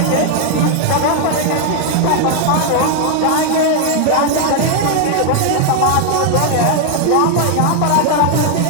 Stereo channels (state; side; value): different; both; correlation 0.00